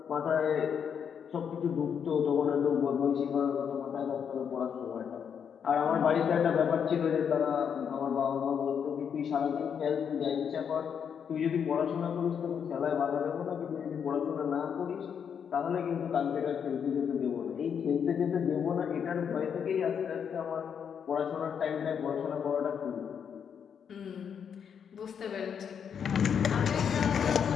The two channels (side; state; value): right; quieter; 7.5 dB